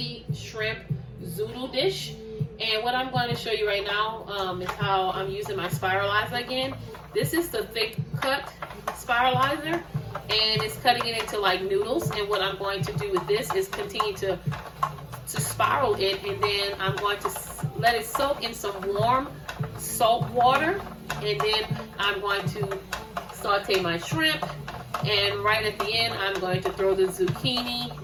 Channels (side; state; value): both; identical; correlation 1.00